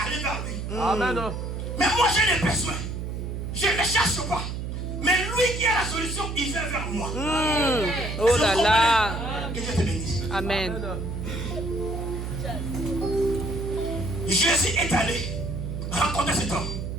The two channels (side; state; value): right; noise; hum, 5 dB below the sound